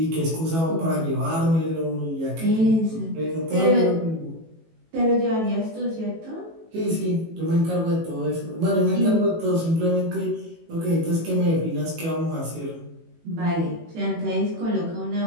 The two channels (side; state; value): left; late; 18 ms